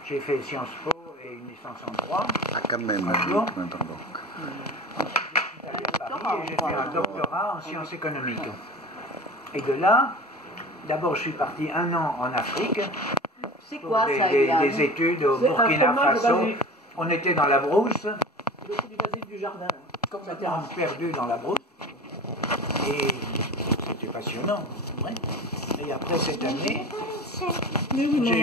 j'ai fait Sciences Po et une licence en droit. Ah, quand même, Strasbourg. pardon. J'ai fait un doctorat en sciences économiques. Et de là, d'abord je suis parti 1 an en Afrique. C'est quoi ça, des études au Burkina Faso. On était dans la brousse. C'est du basilic du jardin, complètement perdu dans la brousse. Et c'était passionnant. Ouais. Et après cette année, j'ai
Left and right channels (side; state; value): both; normal; correlation 0.36